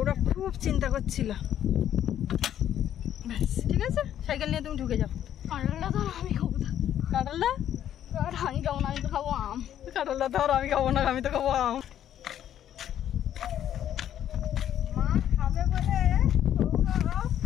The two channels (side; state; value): right; quieter; 10.7 dB